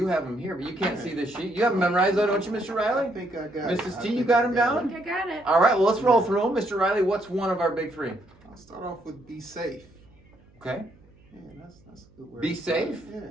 have them here, but you can't see the sheet. You have them memorized though, don't you, Mr. Riley? I think I got it. Mrs. T, you got them I down? think I got it. All right, well, let's roll through them. Mr. Riley, what's one of our big 3? I'll start off with be safe. Okay. Yeah, that's a good word. Be safe? Yeah.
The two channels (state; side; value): noise; right; hum, 29 dB below the sound